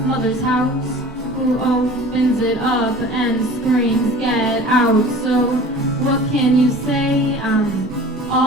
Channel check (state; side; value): normal; both; correlation 0.42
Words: mother's house, who opens it up and screams, "Get out!" So what can you say? I'm